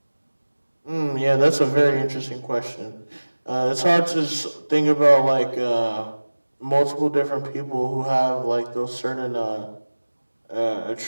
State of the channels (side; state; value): both; inverted; correlation -1.00